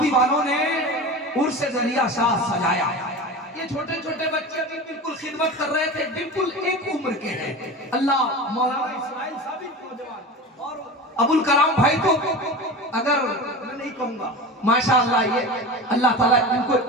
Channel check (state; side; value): normal; both; correlation 0.30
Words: वालों ने उर्स दरिया शाह सजाया। ये छोटे छोटे बच्चे भी बिल्कुल खिदमत कर रहे थे, बिल्कुल एक उम्र के हैं। अल्लाह मौलाना इस्माइल साहब नौजवान और अबुल कलाम भाई को, अगर मैं नहीं कहूंगा, माशाअल्लाह, ये अल्लाह ताला इनको